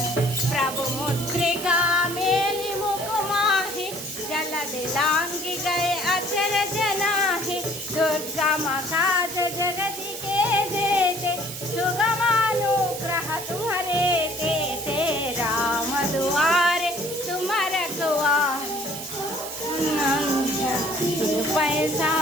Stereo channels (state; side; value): noise; right; hiss, 9 dB below the sound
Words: प्रभु मुद्रिका मेलि मुख माहि, जलद लांघि गए अचर जनाहि, दुर्गम काज जगति के जेते, सुगम अनुग्रह तुम्हारे तेते, राम दुआरे तुम रखवारे, पैसा